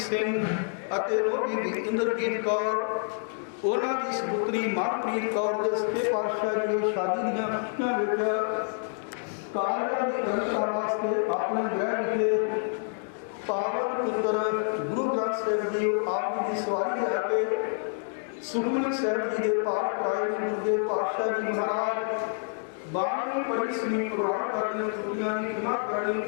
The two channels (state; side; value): silent; right; 59 dB below the other